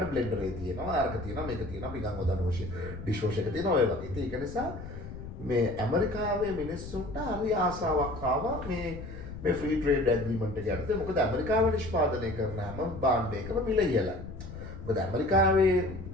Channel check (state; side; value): noise; left; rumble, 11 dB below the sound